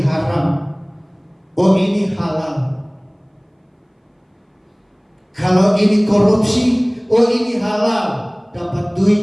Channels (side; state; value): both; identical; correlation 1.00